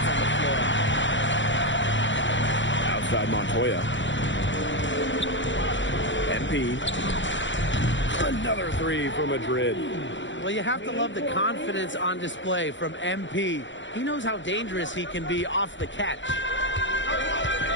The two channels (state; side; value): late; right; 0.54 ms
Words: on the floor. Outside Montoya. MP. Another 3 for Madrid. Well, you have to love the confidence on display from MP. He knows how dangerous he can be off the catch.